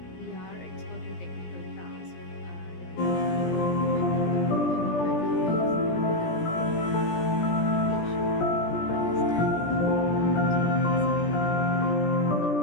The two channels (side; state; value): right; late; 17 ms